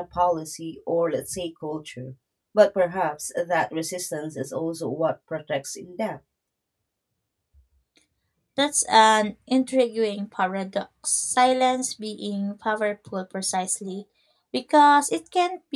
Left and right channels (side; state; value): both; identical; correlation 1.00